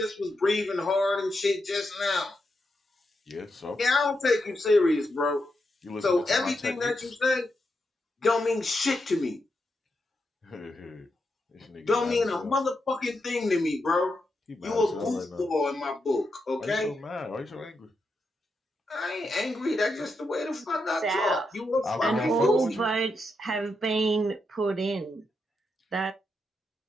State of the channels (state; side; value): normal; both; correlation 0.84